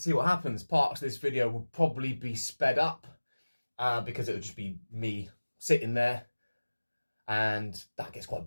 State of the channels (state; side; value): inverted; both; correlation -1.00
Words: what happens. Parts of this video will probably be sped up because it would just be me sitting there, and that gets quite